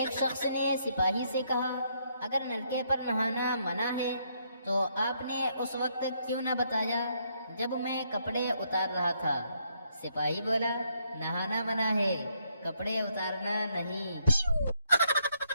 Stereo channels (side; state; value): both; inverted; correlation -0.74